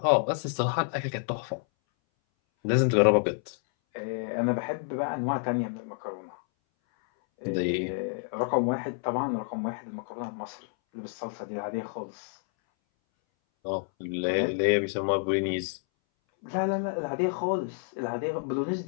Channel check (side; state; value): right; silent; 59 dB below the other